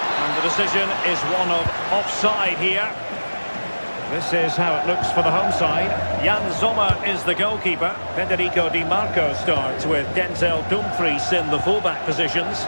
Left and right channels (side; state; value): both; inverted; correlation -1.00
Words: And the decision is one of offside here. This is how it looks for the home side. Jan Sommer is the goalkeeper. Federico Di Marco starts with Denzel Dumfries in the fullback positions.